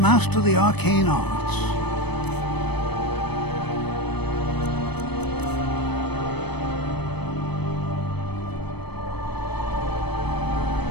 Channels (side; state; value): right; late; 0.98 ms